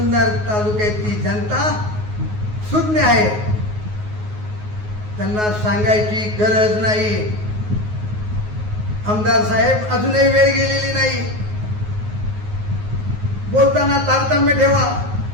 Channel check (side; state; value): left; late; 9.5 ms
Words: तालुक्याची जनता सुज्ञ आहे. त्यांना सांगायची गरज नाही. आमदार साहेब, अजूनही वेळ गेलेली नाही. बोलताना तारतम्य ठेवा,